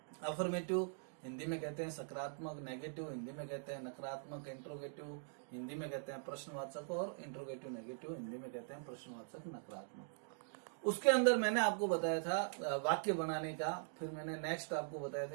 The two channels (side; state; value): left; silent; digital silence